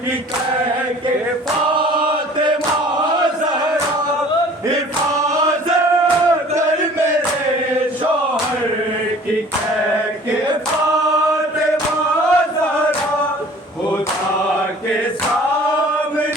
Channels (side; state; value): both; normal; correlation 0.49